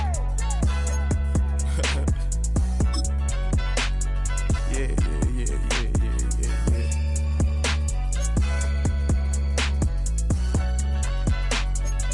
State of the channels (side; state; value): both; identical; correlation 1.00